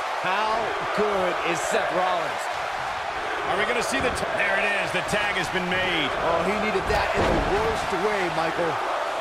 How good is Seth Rollins? Are we going to see there it is. The tag has been made. Oh, he needed that in the worst way, Michael.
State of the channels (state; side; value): identical; both; correlation 1.00